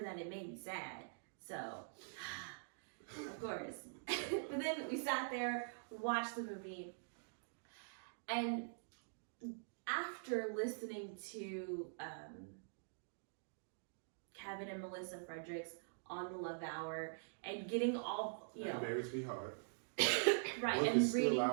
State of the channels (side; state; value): left; silent; digital silence